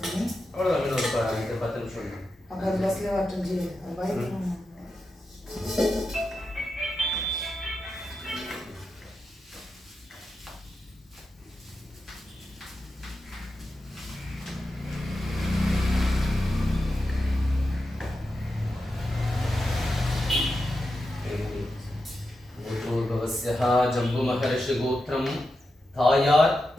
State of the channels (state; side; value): normal; both; correlation 0.89